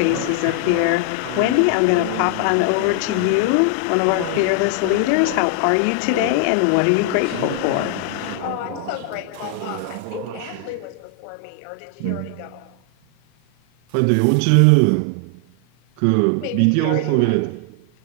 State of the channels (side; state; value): both; different; correlation 0.00